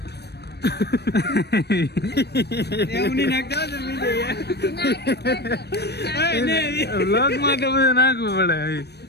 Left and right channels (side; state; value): right; late; 0.48 ms